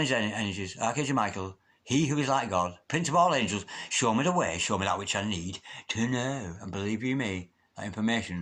energies. Archangel Michael, he who is like God, Prince of all angels, show me the way, show me that which I need to know. And believe you me, that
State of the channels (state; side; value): identical; both; correlation 1.00